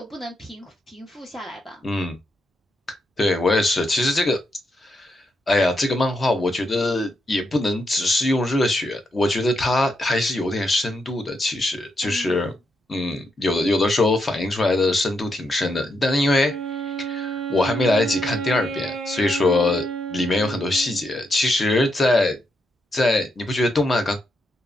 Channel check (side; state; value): both; normal; correlation 0.81